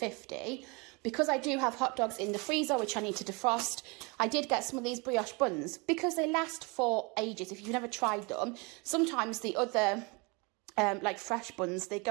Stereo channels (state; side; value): quieter; left; 29.1 dB